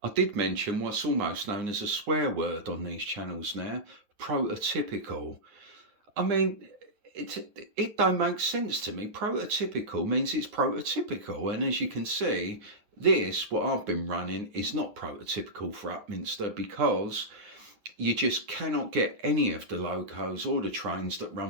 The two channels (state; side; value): late; left; 9.7 ms